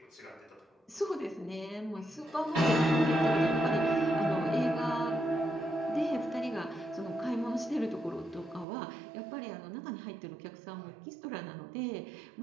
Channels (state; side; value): drops out; left; at 8.7 s